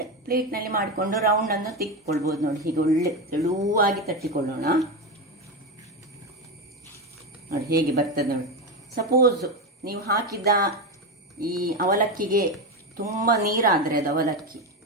ಪ್ಲೇಟ್ನಲ್ಲಿ ಮಾಡಿಕೊಂಡು ರೌಂಡನ್ನು ತೆಗೆದುಕೊಳ್ಬೋದು. ನೋಡಿ, ಹೀಗೆ ಒಳ್ಳೆ ತೆಳುವಾಗಿ ತಟ್ಟಿಕೊಳ್ಳೋಣ. ನೋಡಿ ಹೇಗೆ ಬರ್ತದೆ ನೋಡಿ. ಸಪೋಸ್ ನೀವು ಹಾಕಿದ ಈ ಅವಲಕ್ಕಿಗೆ ತುಂಬ ನೀರಾದರೆ ಅದು ಅವಲಕ್ಕಿ,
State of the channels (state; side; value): normal; both; correlation 0.14